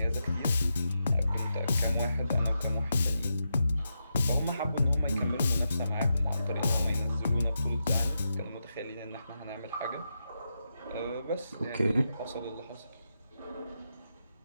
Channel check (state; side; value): inverted; both; correlation -0.87